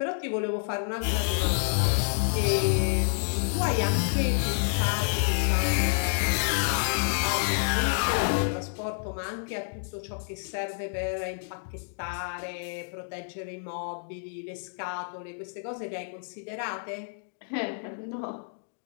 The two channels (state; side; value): silent; right; digital silence